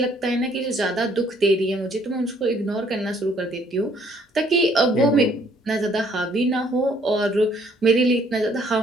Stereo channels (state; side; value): normal; both; correlation 0.63